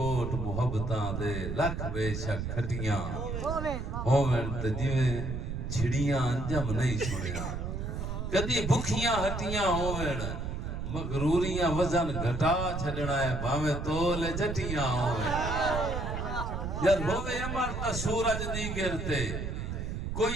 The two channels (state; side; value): noise; right; rumble, 4 dB below the sound